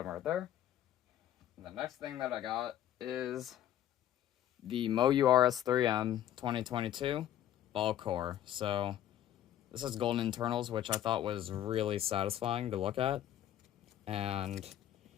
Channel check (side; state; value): right; quieter; 11.5 dB